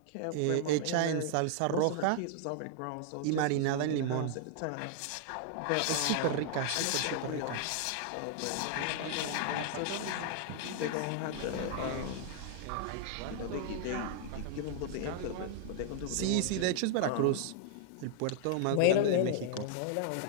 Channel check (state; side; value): different; both; correlation 0.00